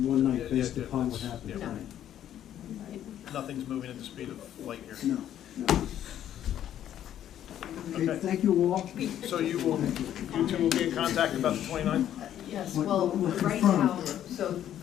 one night Yeah, based yeah, upon what that's- happened yeah. tonight. Nothing's moving at the speed of light here. No, no. Okay, thank you all. So you two will be in contact about the 29th? Yes, What- well, what right confirm? now, so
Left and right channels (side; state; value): right; quieter; 11.0 dB